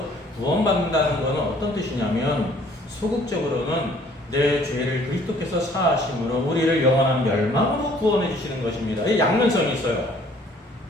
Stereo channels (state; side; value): normal; both; correlation 0.58